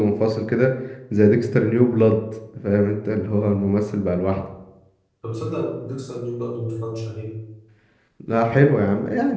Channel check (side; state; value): both; identical; correlation 1.00